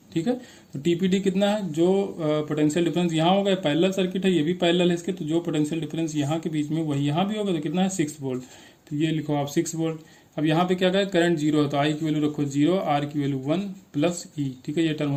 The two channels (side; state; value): both; identical; correlation 1.00